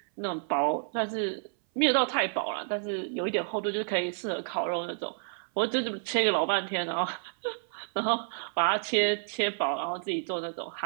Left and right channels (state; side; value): silent; left; 58 dB below the other